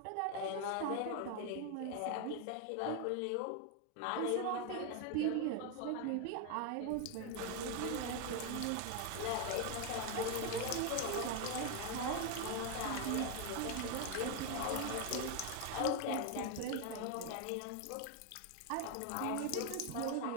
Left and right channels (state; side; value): different; both; correlation 0.01